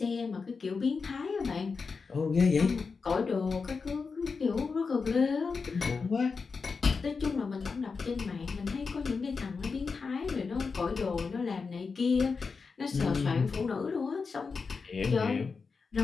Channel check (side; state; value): right; quieter; 4.9 dB